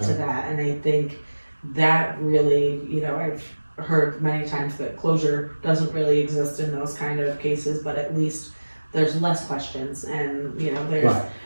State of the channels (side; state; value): both; inverted; correlation -1.00